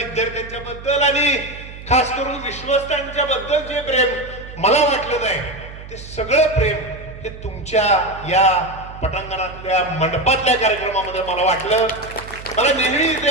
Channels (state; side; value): noise; right; hum, 15 dB below the sound